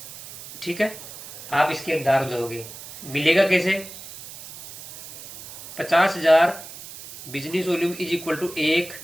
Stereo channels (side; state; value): right; noise; hiss, 14 dB below the sound